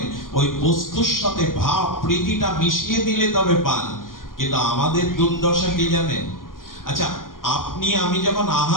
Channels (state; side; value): late; right; 0.90 ms